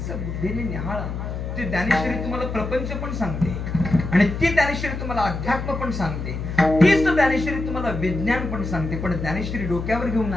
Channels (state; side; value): noise; left; hum, 5 dB below the sound